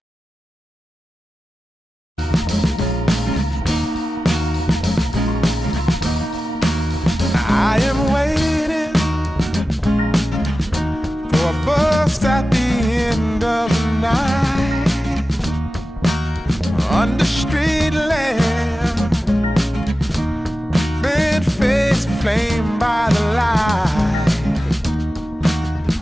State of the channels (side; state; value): both; normal; correlation 0.94